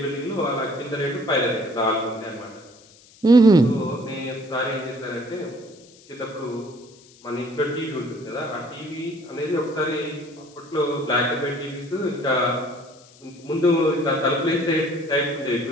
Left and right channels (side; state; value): left; noise; hiss, 25 dB below the sound